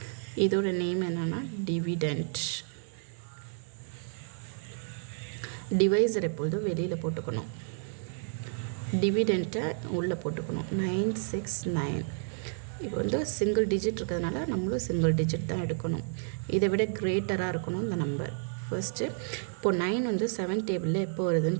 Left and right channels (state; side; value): silent; left; digital silence